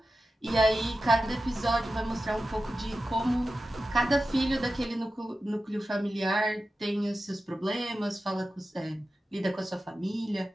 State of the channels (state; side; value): normal; both; correlation 0.92